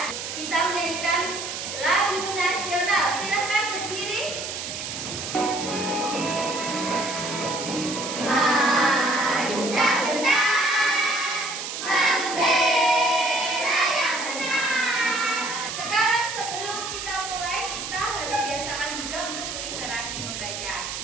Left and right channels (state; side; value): noise; right; hiss, 6 dB below the sound